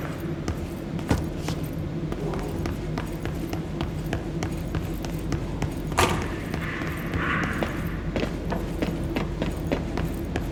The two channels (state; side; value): identical; both; correlation 1.00